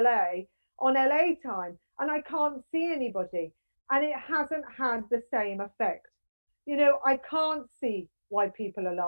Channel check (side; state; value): both; inverted; correlation -1.00